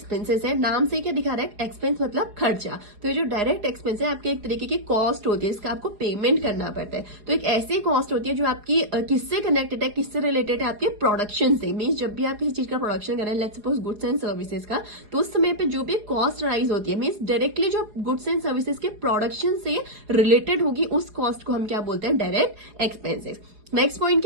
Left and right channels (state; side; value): late; left; 4.8 ms